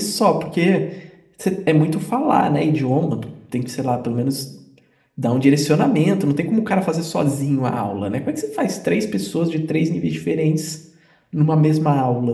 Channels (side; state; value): both; identical; correlation 1.00